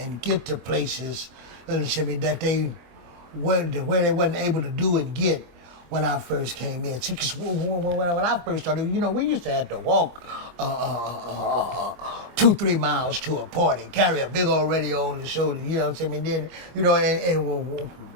get to places that they where they wasn't able to do and get when I first came in. See, 'cause when I first started, we used to have to walk 2-3 miles to a party, carry a big old radio on the shoulder. Then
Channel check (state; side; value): late; left; 25 ms